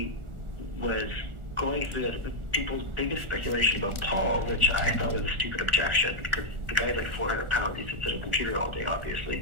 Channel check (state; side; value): late; left; 1.4 ms